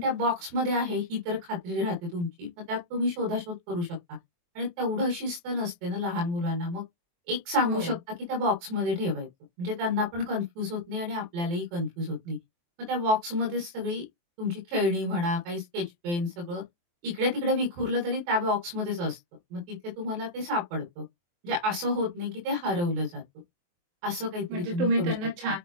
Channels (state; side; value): late; left; 23 ms